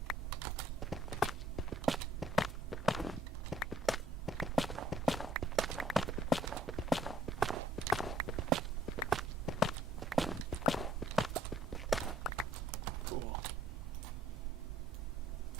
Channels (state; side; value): normal; both; correlation 0.61